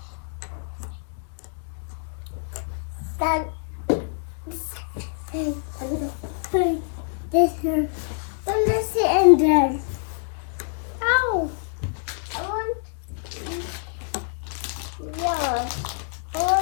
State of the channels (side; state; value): right; silent; digital silence